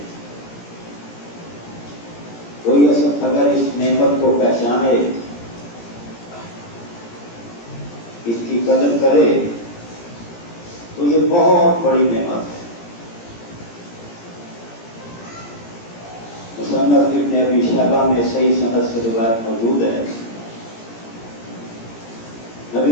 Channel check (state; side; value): late; right; 17 ms